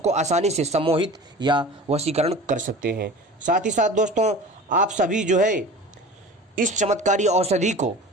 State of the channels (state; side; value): normal; both; correlation 0.38